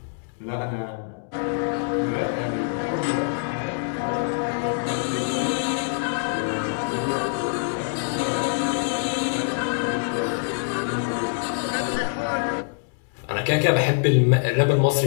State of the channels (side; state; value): right; silent; digital silence